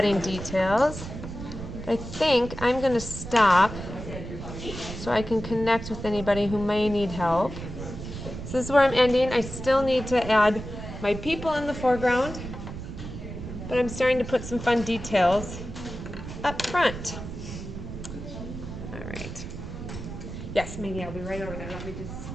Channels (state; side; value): noise; right; rumble, 9 dB below the sound